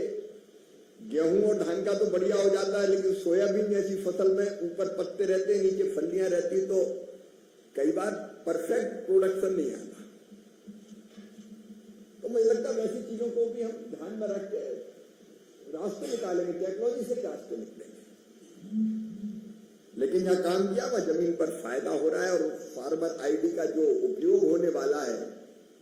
गेहूं और धान का तो बढ़िया हो जाता है, लेकिन सोयाबीन जैसी फसल में ऊपर पत्ते रहते हैं, नीचे फलियां रहती, तो कई बार परफेक्ट प्रोडक्शन नहीं आता। तो मुझे लगता है वैसी चीजों को भी हम ध्यान में रख के रास्ते निकालेंगे, टेक्नोलॉजी से ही रास्ते निकलेंगे। लेकिन जहां काम किया वह जमीन पर फायदा हो रहा है, और फार्मर आईडी का जो उपयोग होने वाला है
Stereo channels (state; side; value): identical; both; correlation 1.00